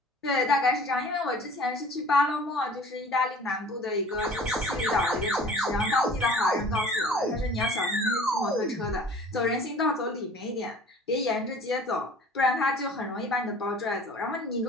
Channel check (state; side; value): normal; both; correlation 0.47